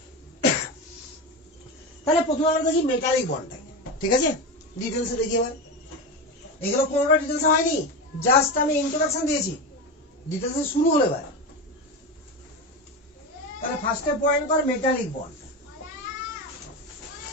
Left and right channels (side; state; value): both; normal; correlation 0.20